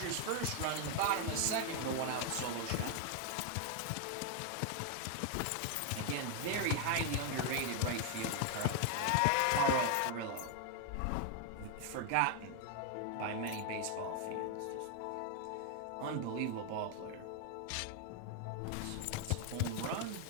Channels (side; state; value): both; different; correlation 0.00